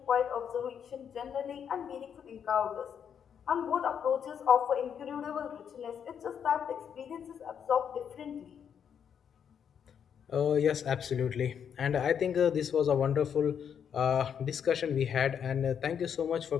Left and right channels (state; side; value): quieter; right; 8.0 dB